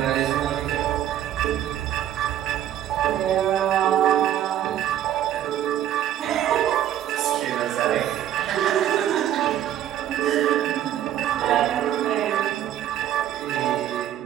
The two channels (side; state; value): left; quieter; 11.5 dB